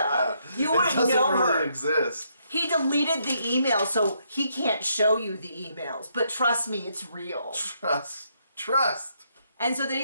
You wouldn't know her. It doesn't really exist. He deleted the email, so he can't show you the emails. But trust me, it's real. Trust. And so then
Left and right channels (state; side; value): inverted; both; correlation -0.75